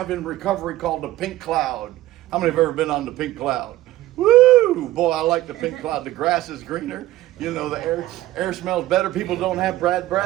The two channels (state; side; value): quieter; left; 15.9 dB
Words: in recovery called the pink cloud. How many have ever been on the pink cloud? Woo! Boy, I like the pink cloud. The grass is greener. You know, the air smells better. People don't have bad